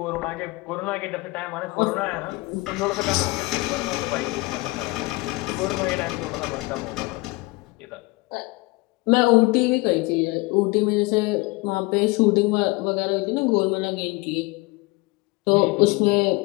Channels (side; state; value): right; quieter; 23.6 dB